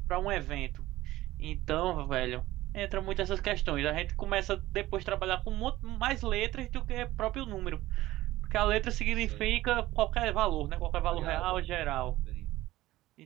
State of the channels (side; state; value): left; quieter; 16.6 dB